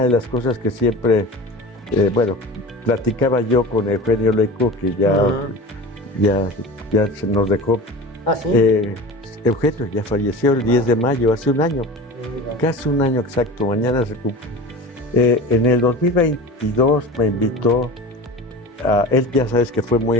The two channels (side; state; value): both; normal; correlation 0.33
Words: de las cosas que siempre, platicaba yo con Eugenio Leico, que ya se nos dejó. ¿Ah, sí? Eugenio ya falleció el 10 de mayo, hace un año, casi un año exacto, mañana se cumple. En el 2022 me invitó él, ya sabes que fue muy